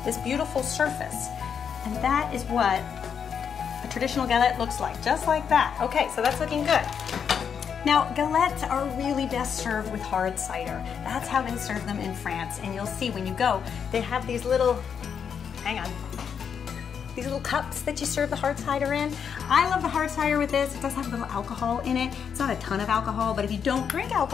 this beautiful surface. And that is what a traditional galette looks like, just like that. Okay, so that's looking good. Now, galettes are really best served with hard cider. That's how they serve them in France. And you'll see when you go, they have these little, these little cups that you serve the hard cider in. I love the hard cider with this. It does have a little alcohol in it. It's not a ton of alcohol, but if you don't drink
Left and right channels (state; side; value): quieter; right; 7.3 dB